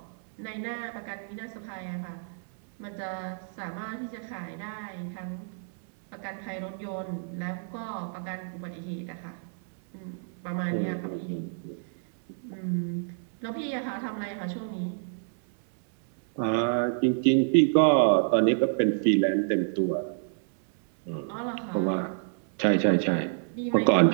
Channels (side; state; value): left; silent; 59 dB below the other